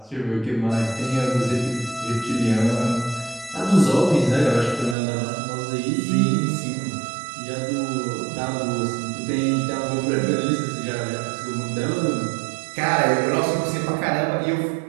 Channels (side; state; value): left; drops out; at 5.0 s